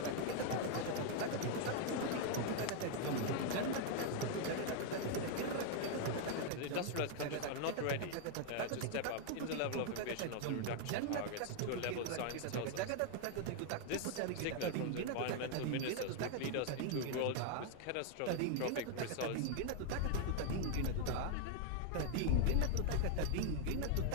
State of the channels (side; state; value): both; different; correlation 0.00